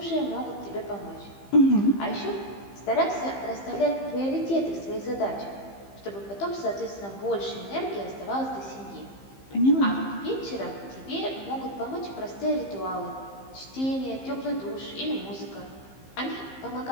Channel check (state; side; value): late; right; 15 ms